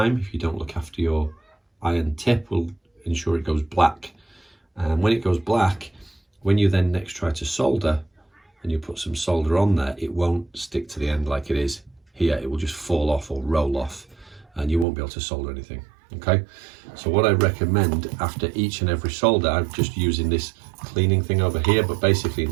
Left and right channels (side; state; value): left; drops out; at 14.9 s